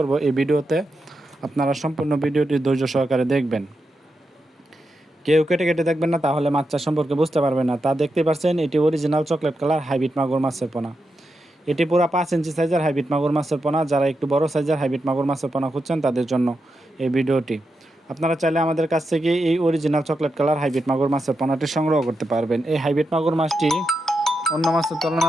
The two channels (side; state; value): both; normal; correlation 0.87